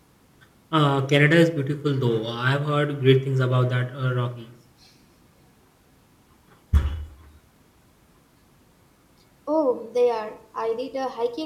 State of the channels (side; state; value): both; identical; correlation 1.00